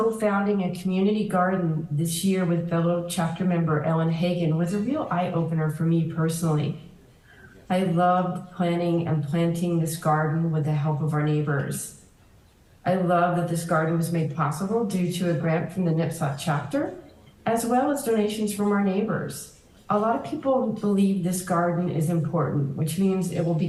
a community garden this year with fellow chapter member Ellen Hagan was a real eye-opener for me personally. I loved planning and planting this garden with the help of our neighbors. I love that this garden was made possible due to a grant from the NPSOT chapter, as well as donations from our neighbors. A lot of people believe this garden is important, which means it will be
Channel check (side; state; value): both; identical; correlation 1.00